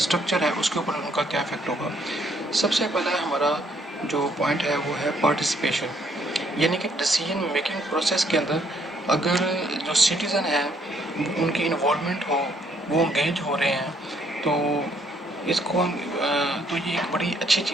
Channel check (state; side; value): normal; both; correlation 0.68